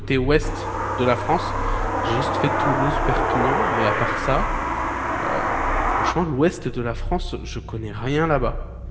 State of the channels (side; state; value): both; identical; correlation 1.00